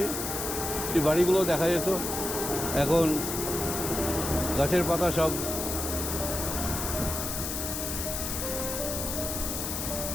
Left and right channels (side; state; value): left; noise; hiss, 3 dB below the sound